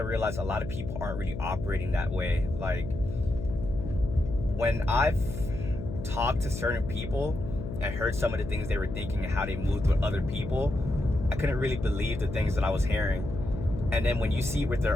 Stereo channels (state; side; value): noise; left; hum, 7 dB below the sound